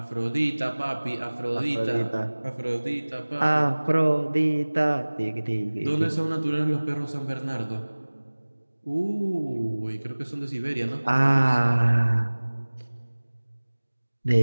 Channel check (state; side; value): inverted; both; correlation -1.00